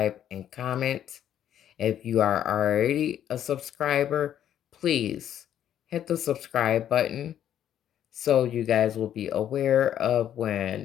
and comment. If you are already a subscriber, please hit the subscribe button so you guys will be aware of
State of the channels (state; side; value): quieter; right; 10.5 dB